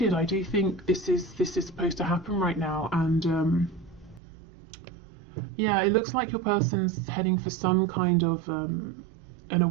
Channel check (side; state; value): left; drops out; at 4.2 s